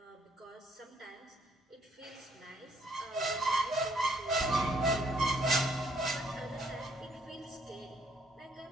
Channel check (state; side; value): normal; both; correlation 0.67